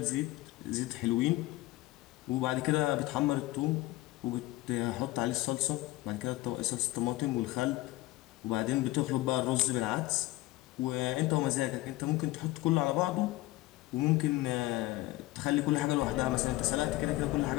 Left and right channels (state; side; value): quieter; right; 18.3 dB